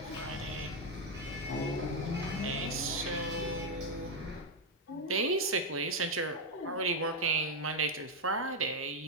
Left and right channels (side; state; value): both; normal; correlation 0.02